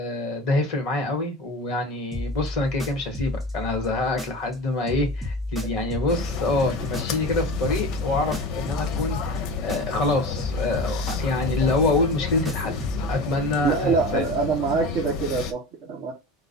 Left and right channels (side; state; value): both; normal; correlation 0.32